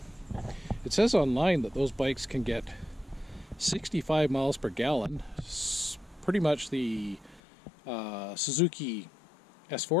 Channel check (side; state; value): right; drops out; at 7.4 s